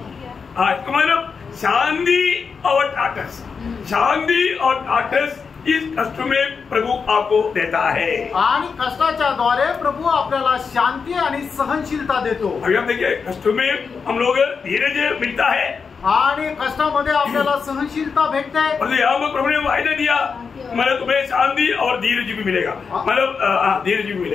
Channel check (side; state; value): right; quieter; 5.6 dB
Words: लिया। मतलब शांति और ढाढ़स, शांति और ढाढ़स इस कष्ट में प्रभु आपको देता है। आणि कष्टाच्या द्वारे प्रभु आपल्याला शांती आणि सहनशीलता देतो। अभी हम देखिए, कष्ट में हम लोग धीरज मिलता है आणि कष्टामध्ये आपल्याला सहनशीलता भेटते। और यहाँ पर प्रभु ने वायदा दिया, मतलब तुम्हें शांति और धीरज भी मिलेगा, मतलब धीरज भी